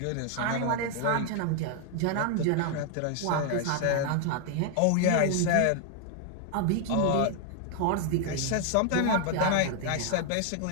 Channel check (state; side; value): different; both; correlation 0.00